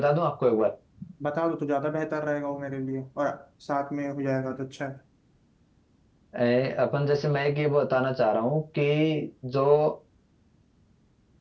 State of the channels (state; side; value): identical; both; correlation 1.00